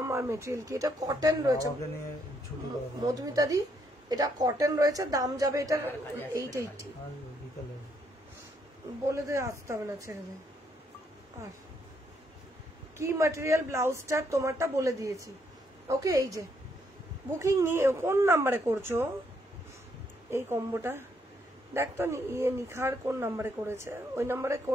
আর মেটেরিয়াল কি? এটা কটন রয়েছে বাবাকে নিয়ে ছুটি দেবে মধুমিতা দি, এটা কটন রয়েছে, দাম যাবে এটা 880। আর বিকালে বলে দে, আসতে হবে না, ছেড়ে দে। আর কি ম্যাটেরিয়াল ব্লাউজটা তোমারটা বলে দিয়েছি। ওকে, এই যে বুকিং নিয়ে কোন নাম্বারে করছো এই কম্বোটা? দেখ তো নিখার কোন নাম্বারে করেছে, ওই নাম্বারে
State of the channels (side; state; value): both; normal; correlation 0.73